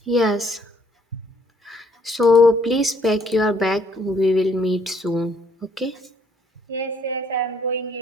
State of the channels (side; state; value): both; normal; correlation 0.65